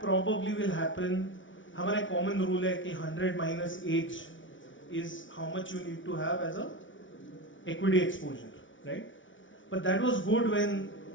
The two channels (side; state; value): right; late; 0.56 ms